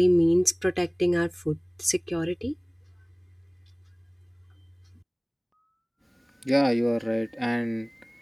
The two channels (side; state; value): both; identical; correlation 1.00